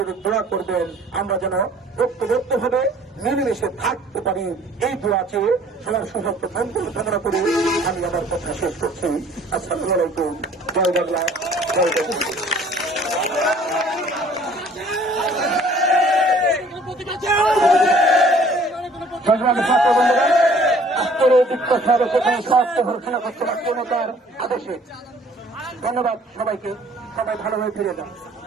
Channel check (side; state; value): both; normal; correlation 0.55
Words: দোয়া করবেন, আমরা যেন ঐক্যবদ্ধভাবে মিলেমিশে থাকতে পারি, এই দোয়া চেয়ে সবার সুস্বাস্থ্য মঙ্গল কামনা করে আমি আমার কথা শেষ করছি। আসসালামু আলাইকুম। জয় বাংলা, জয় বাংলা। ছাত্র বন্ধুরা, আজকের এই দীক্ষা সর্বপ্রথম স্বাস্থ্য ঘোষণা করতে পূর্ণতার আদেশে ধন্যবাদ সবাইকে। সবাই ভালোভাবে ফিরে যান।